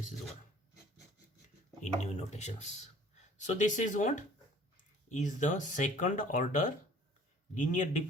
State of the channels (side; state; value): both; normal; correlation 0.52